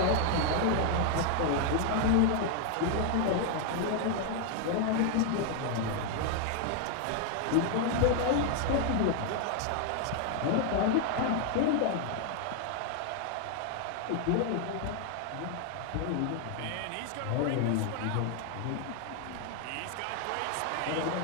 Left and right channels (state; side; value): different; both; correlation 0.00